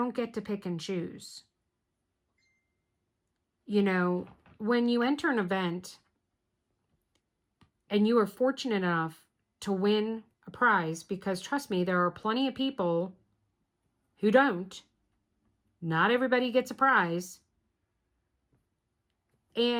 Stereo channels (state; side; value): identical; both; correlation 1.00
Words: get to pick and choose. You know, when you enter an event and you are fortunate enough to win a prize, because trust me, there are plenty of people who don't. Not everybody gets a prize.